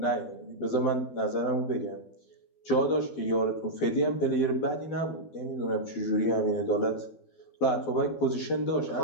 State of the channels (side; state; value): right; late; 12 ms